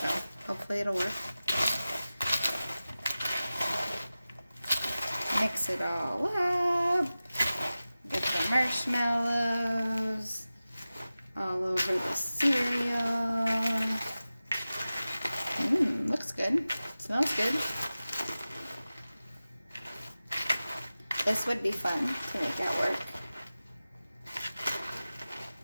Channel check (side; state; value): both; inverted; correlation -0.96